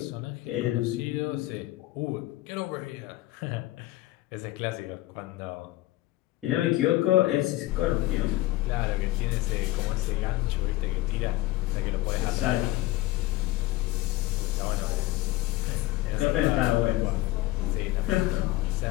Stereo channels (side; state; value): right; quieter; 17.3 dB